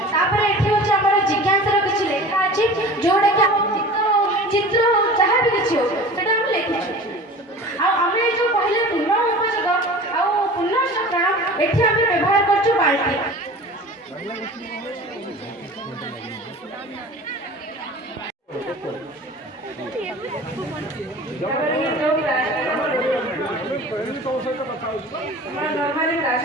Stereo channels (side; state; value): both; normal; correlation 0.39